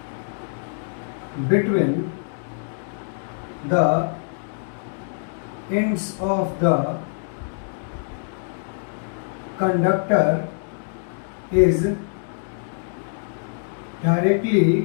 between the ends of the conductor is directly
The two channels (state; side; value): silent; right; digital silence